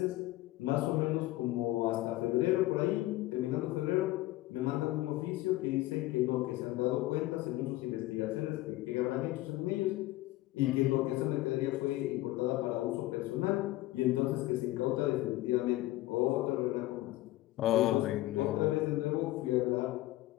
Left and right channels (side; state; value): right; quieter; 17.3 dB